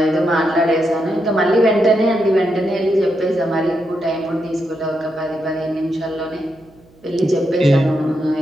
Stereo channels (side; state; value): right; noise; hum, 29 dB below the sound